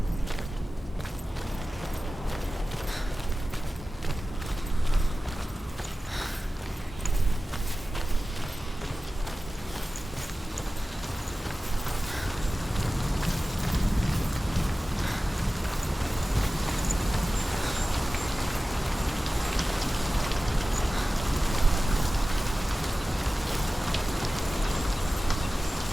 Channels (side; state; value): both; normal; correlation 0.96